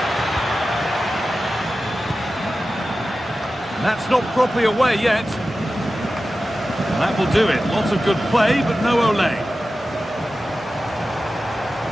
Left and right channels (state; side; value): normal; both; correlation 0.94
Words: And that's not properly away yet. And that will do it. Lots of good play, but no Olé.